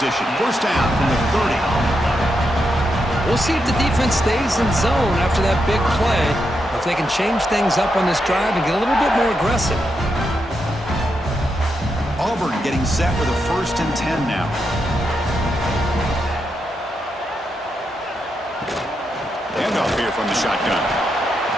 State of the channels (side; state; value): both; normal; correlation 0.84